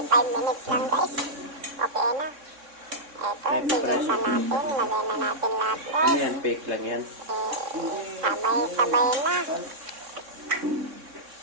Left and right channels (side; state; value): left; late; 3.6 ms